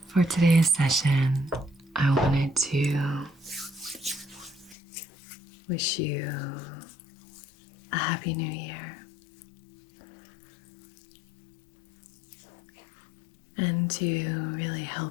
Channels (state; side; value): drops out; right; at 4.8 s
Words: For today's session, I wanted to wish you a happy new year and to really